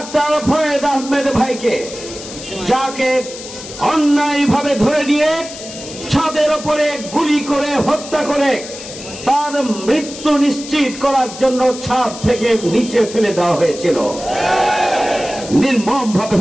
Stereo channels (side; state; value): left; noise; hiss, 13 dB below the sound